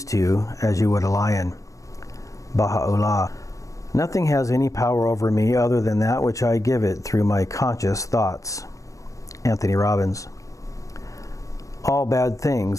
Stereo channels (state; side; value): late; right; 0.16 ms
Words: two as you would a lion. Baha'u'llah. Nothing has any power over me other than that which I give it through my conscious thoughts. Anthony Robbins. All bad